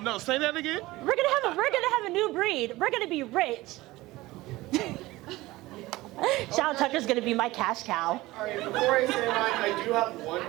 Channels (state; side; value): quieter; left; 18.9 dB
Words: No, say that again. We're gonna have a new breed. We're gonna be rich. Shawn Tucker's gonna be my cash cow. Alright, before I say mine, I do have